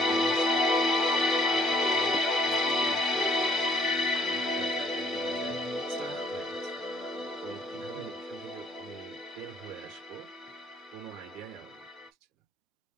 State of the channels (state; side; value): normal; both; correlation 0.60